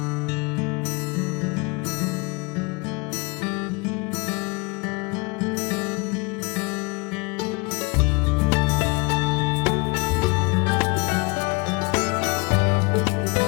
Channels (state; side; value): quieter; right; 28.5 dB